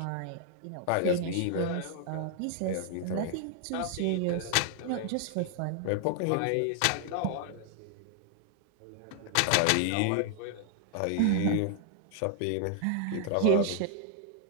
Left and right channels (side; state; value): both; different; correlation 0.00